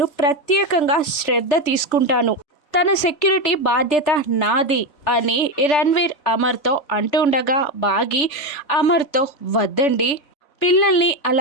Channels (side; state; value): right; late; 3.3 ms